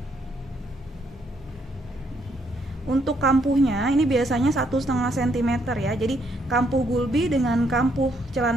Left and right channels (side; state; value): both; normal; correlation 0.72